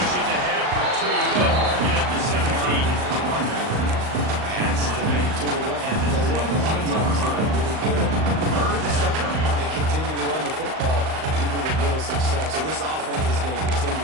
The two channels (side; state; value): left; late; 38 ms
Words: ahead for 2. They'll mark it at the 17. Pass to the run. And a lot of times they're really good. They continue to run the football even with little success. So this offense is going to